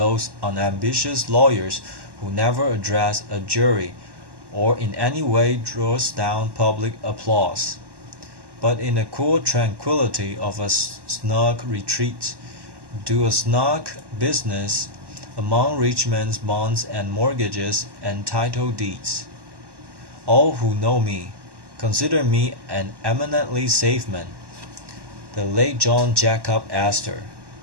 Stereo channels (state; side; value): late; left; 1.1 ms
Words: unambitious lawyers who never address a jury or in any way draws down public applause, but in the cool tranquillity of a snug retreat, do a snug business among rich men's bonds and mortgages and title deeds. All who know me consider me an eminently safe man. The late John Jacob Astor,